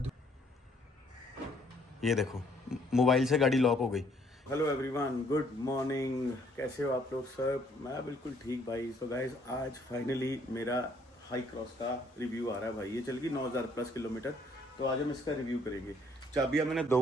ये देखो मोबाइल से गाड़ी लॉक हो गई। हेलो एवरीवन, गुड मॉर्निंग, कैसे हो आप लोग सब? मैं बिल्कुल ठीक भाई। सो गाइस आज फाइनली मेरा हाई क्रॉस का रिव्यू आ रहा है भाई। ये चल गई 9,000 प्लस किलोमीटर, तो आज हम इसका रिव्यू करेंगे। चाबियाँ मैंने 2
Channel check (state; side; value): normal; both; correlation 0.65